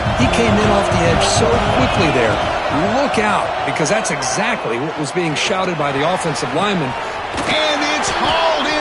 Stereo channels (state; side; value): identical; both; correlation 1.00